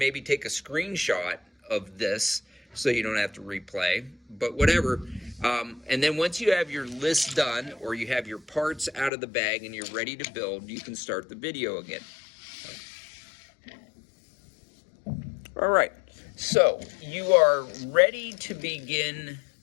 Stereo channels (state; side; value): drops out; right; at 9.1 s